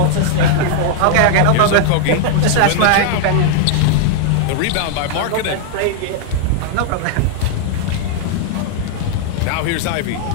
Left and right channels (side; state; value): both; different; correlation 0.00